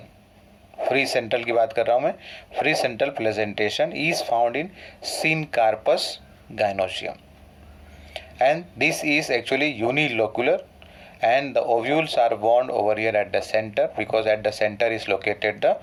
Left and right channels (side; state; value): both; identical; correlation 1.00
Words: free central की बात कर रहा हूँ मैं, free central presentation is found in Syncarpus gynoecium, and this is actually unilocular, and the ovules are bound over here at the center, because at the center is located the